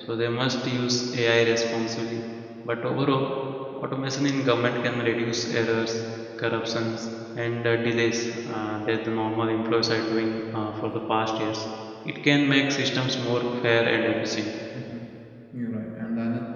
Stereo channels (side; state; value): both; identical; correlation 1.00